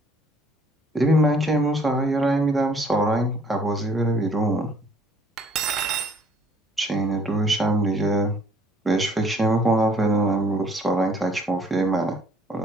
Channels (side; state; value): both; normal; correlation 0.58